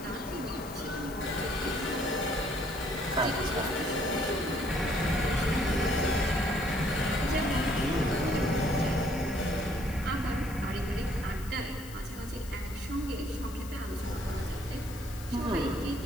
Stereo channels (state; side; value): noise; left; hiss, 17 dB below the sound